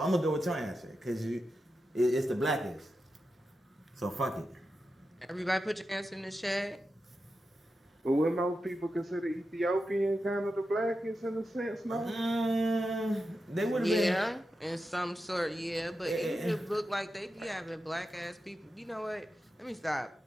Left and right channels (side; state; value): both; normal; correlation 0.90